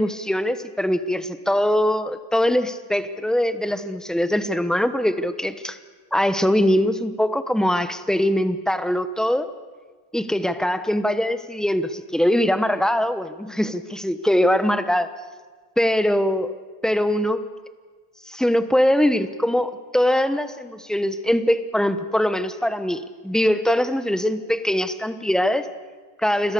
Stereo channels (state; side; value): normal; both; correlation 0.90